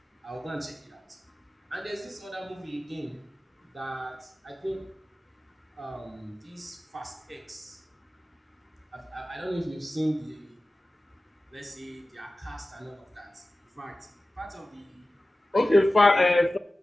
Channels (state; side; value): normal; both; correlation 0.96